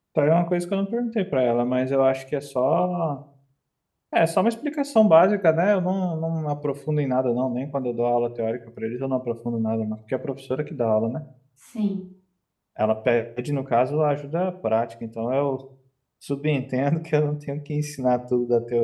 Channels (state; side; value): identical; both; correlation 1.00